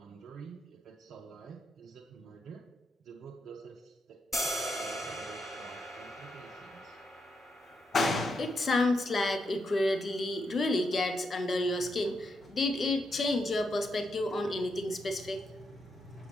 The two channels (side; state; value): both; normal; correlation 0.82